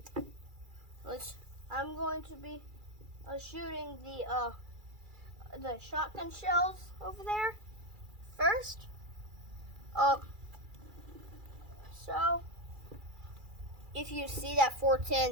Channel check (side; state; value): left; late; 2.3 ms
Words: I'm going to be shooting the shotgun shells over there first. So if you see that